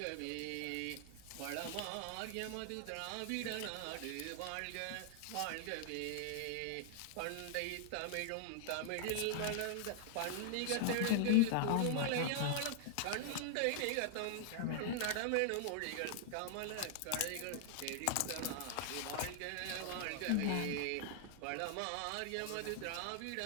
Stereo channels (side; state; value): both; different; correlation 0.00